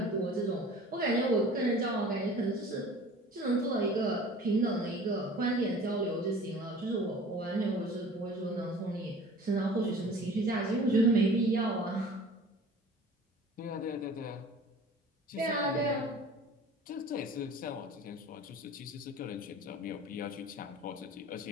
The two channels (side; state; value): both; normal; correlation 0.44